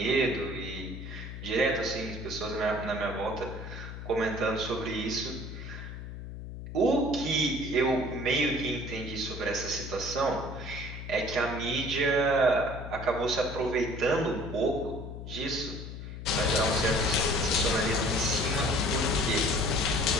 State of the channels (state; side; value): noise; left; hum, 9 dB below the sound